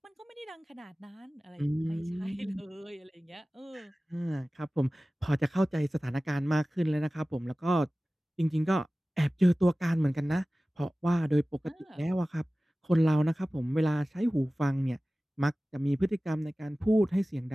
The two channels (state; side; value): normal; both; correlation 0.97